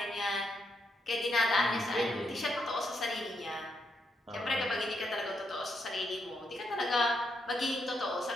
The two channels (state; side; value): normal; both; correlation 0.79